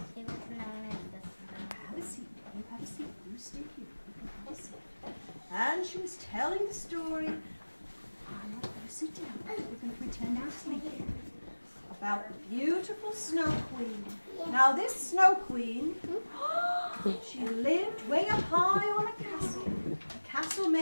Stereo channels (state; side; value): inverted; both; correlation -1.00